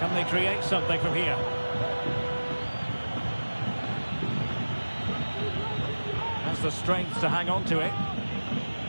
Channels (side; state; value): both; inverted; correlation -1.00